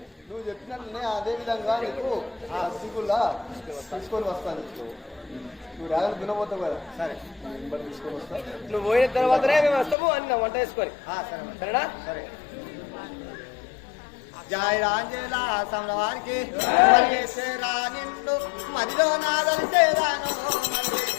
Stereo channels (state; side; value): drops out; right; at 10.0 s